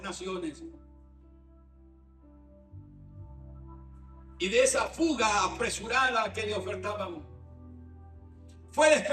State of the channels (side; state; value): both; identical; correlation 1.00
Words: naciones y de esa fuga apresurada que le ofertaban. Fue